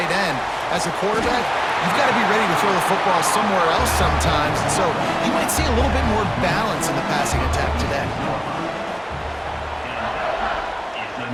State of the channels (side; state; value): both; identical; correlation 1.00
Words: end as a quarterback, you've got to be ready to throw the football somewhere else sometimes, and so you might see a little bit more balance in the passing attack today.